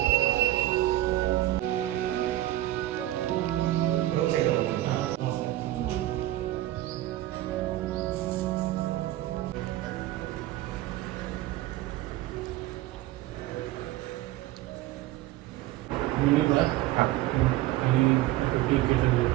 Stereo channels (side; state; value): left; quieter; 15.6 dB